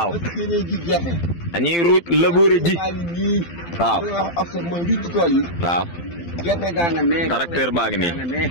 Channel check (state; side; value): late; right; 12 ms